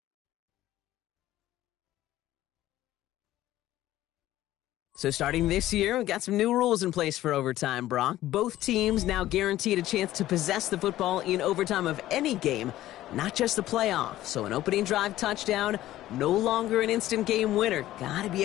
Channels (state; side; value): quieter; right; 14.5 dB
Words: So starting this year, we've got some new rules in place for overtime, Brock. Both teams now guaranteed a chance to possess the football in overtime of any game, not just the playoff. So an opening drive touchdown, no longer an instant game winner. Got to be